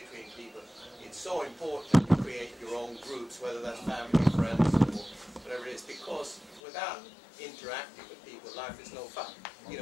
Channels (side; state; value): right; drops out; at 6.6 s